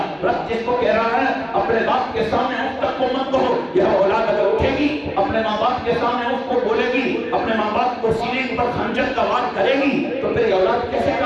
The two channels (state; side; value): identical; both; correlation 1.00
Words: رب جس کو کہہ رہا ہے اپنے باپ کے سامنے اف تک کو مت کہو، یہ اولاد اگر اٹھے گی اپنے ماں باپ کے سامنے اف کو بولے گی، اپنے ماں باپ کو سینے پر خنجر کا وار کرے گی، تو پھر یہ اولاد کیسے